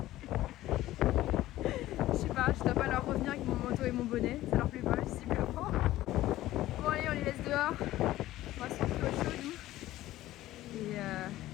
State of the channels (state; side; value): quieter; right; 15.3 dB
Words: sais pas, je dois pas leur revenir avec mon manteau et mon bonnet, ça leur plaît pas visiblement. Bon allez, on les laisse dehors. On va se retrouver au chaud nous. Et